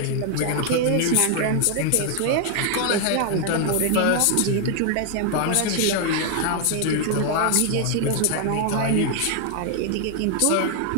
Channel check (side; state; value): both; different; correlation 0.00